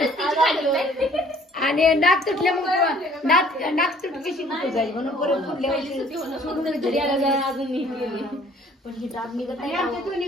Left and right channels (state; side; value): normal; both; correlation 0.56